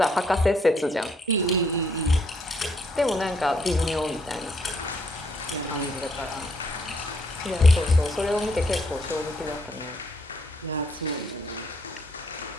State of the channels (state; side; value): normal; both; correlation 0.71